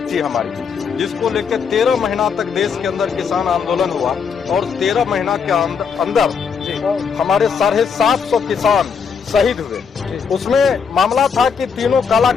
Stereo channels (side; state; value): right; quieter; 6.2 dB